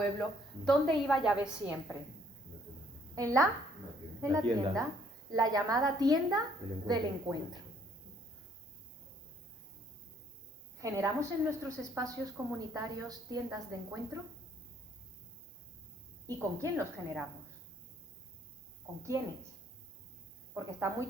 ¿Dónde iba Yahvé siempre? En la tienda, la llamada tienda del encuentro. ¿Generamos en nuestros espacios comunitarios tiendas de encuentro? ¿Y con quién los generamos? ¿Con quiénes? Porque está muy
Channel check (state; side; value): normal; both; correlation 0.64